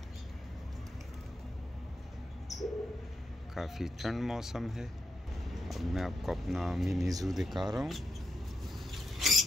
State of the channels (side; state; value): both; normal; correlation 0.83